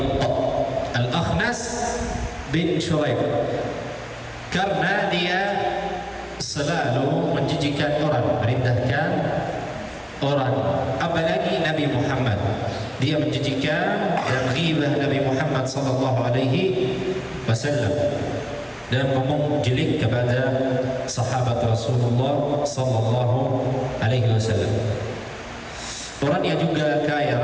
Al-Akhnas bin Shuraih, karena dia selalu menjijikan orang, merendahkan orang, apalagi Nabi Muhammad. Dia menjijikan dan ghibah Nabi Muhammad sallallahu alaihi wasallam dan menjelek kepada sahabat Rasulullah sallallahu alaihi wasallam. Orangnya juga kaya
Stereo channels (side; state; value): both; identical; correlation 1.00